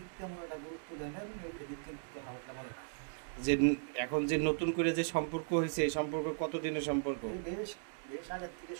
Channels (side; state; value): left; silent; digital silence